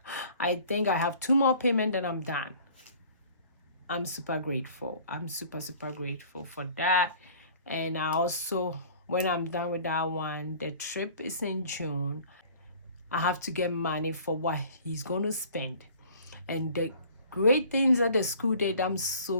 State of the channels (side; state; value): both; inverted; correlation -0.50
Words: I think I have 2 more payments and I'm done. I'm super grateful. I'm super grateful for that. And I also, when I'm done with that one, the trip is in June. I have to get money for what he's going to spend. And the great things that the school did, I'm